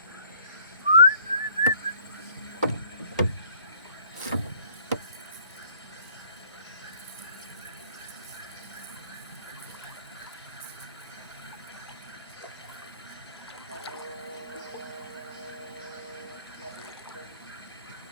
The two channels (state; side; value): inverted; both; correlation -0.59